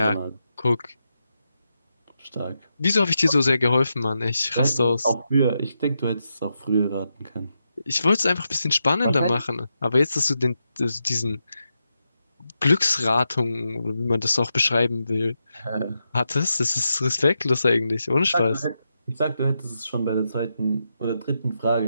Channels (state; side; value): inverted; both; correlation -0.86